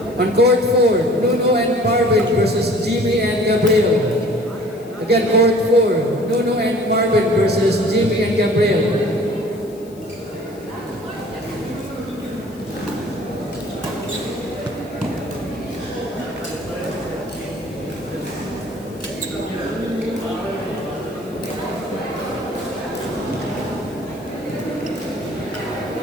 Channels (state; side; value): noise; left; hiss, 25 dB below the sound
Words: On court 4, Nuno and Marvin versus Jimmy and Gabriel. Again, court 4, Nuno and Marvin versus Jimmy and Gabriel.